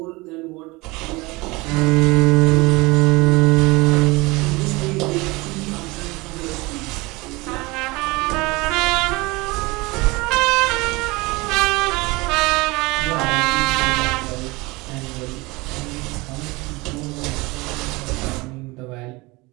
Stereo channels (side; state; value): left; quieter; 23.5 dB